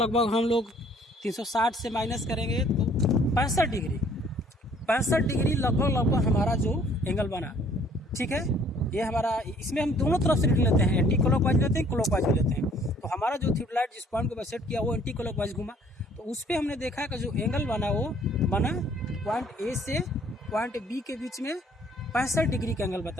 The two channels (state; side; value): normal; both; correlation 0.59